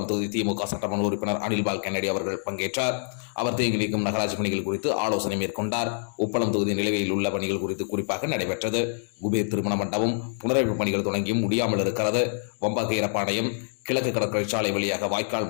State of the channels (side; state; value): right; silent; digital silence